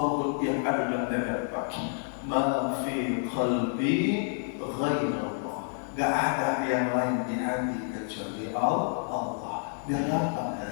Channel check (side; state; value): right; silent; digital silence